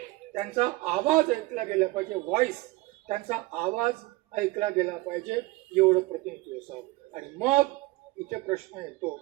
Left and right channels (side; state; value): left; quieter; 20.7 dB